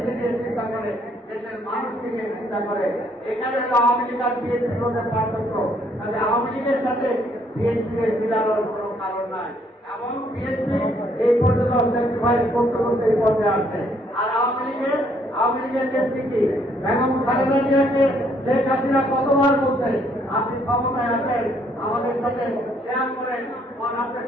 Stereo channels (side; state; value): both; normal; correlation 0.67